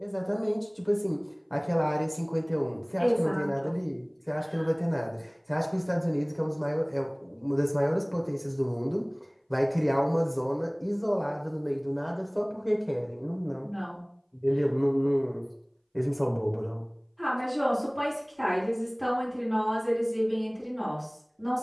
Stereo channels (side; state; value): both; identical; correlation 1.00